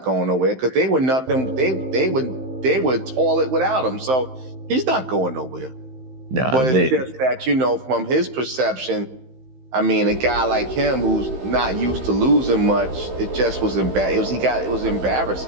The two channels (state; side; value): late; left; 15 ms